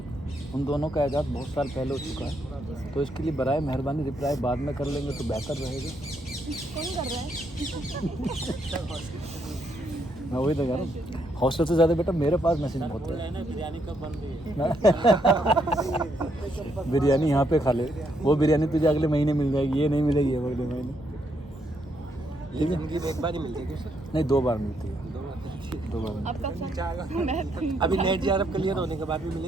उन दोनों का ऐजाद बहुत साल पहले हो चुका है, तो इसके लिए बराए मेहरबानी रिप्लाई बाद में कर लेंगे तो बेहतर रहेगा। कौन कर रहा है? मैं वही तो कह रहा हूँ, हॉस्टल से ज़्यादा बेटा मेरे पास मैसेज बहुत बोल रहे है। हैं ना बिरयानी कब बन रही है। बिरयानी यहाँ पे खा ले, वो बिरयानी तुझे अगले महीने मिल जाएगी, ये नहीं मिलेगी अगले महीने। ये जिंदगी में एक बार ही मिलती है सर। नहीं, 2 बार मिलती है, 2 बार। अब कब सर? अभी नेट JRF क्लियर होने के बाद भी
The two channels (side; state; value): both; normal; correlation 0.75